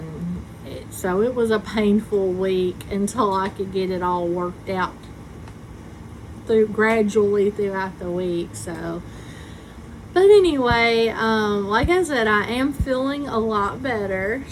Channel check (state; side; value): identical; both; correlation 1.00